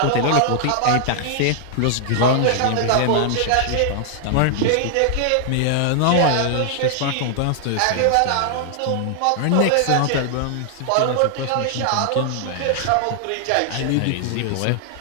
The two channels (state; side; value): different; both; correlation 0.00